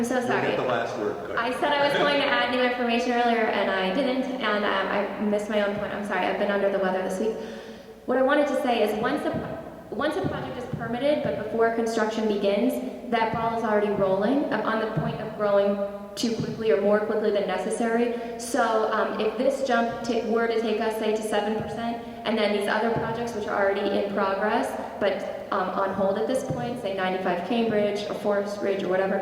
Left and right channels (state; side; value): identical; both; correlation 1.00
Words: so You'll sorry. get the last word. Go ahead. I said I was going to add new information earlier, and I didn't, and I missed my own point. I'm sorry, I've been under the weather this week. What I wanted to say is once a project is permitted, but before construction begins, that ball is already rolling. I'm on the point of growing too quickly or more quickly than necessary. So if this jump were to take us, say, to 7%, and then these other projects, which are already in progress, but on hold at this point, say 95 Cambridge or Forest Ridge or